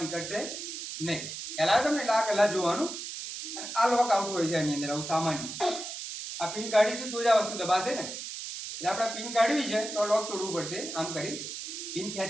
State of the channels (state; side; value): noise; right; hiss, 7 dB below the sound